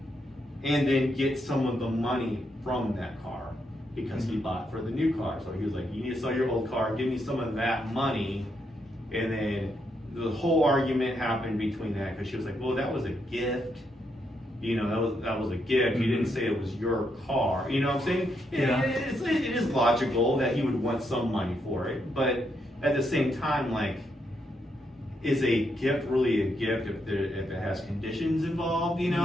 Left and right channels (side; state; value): both; normal; correlation 0.79